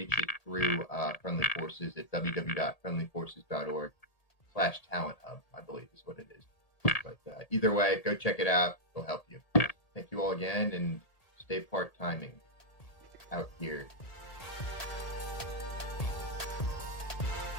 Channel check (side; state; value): right; late; 1.8 ms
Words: it through Friendly Forces at www.friendlyforces.org/talent hub, I believe is what it is. But either way, go check it out. It'll help you. Thank you all again, and stay part-timing out here